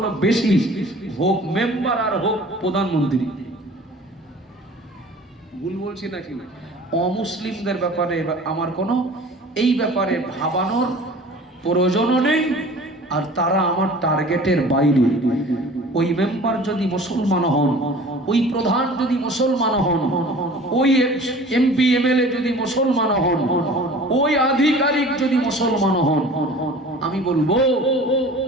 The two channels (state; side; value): normal; both; correlation 0.44